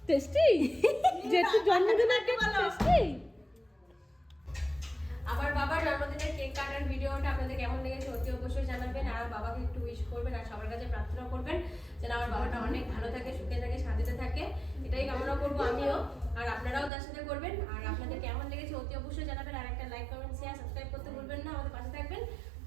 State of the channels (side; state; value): left; drops out; at 16.9 s